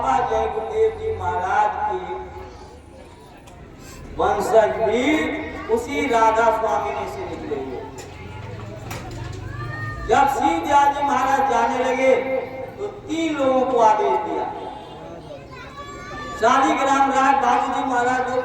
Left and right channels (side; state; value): both; identical; correlation 1.00